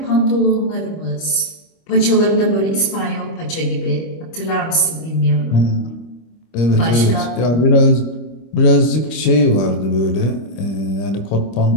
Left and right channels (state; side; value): late; right; 25 ms